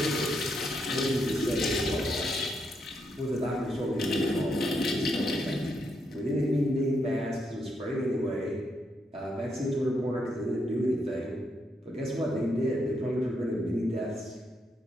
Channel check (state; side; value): normal; both; correlation 0.79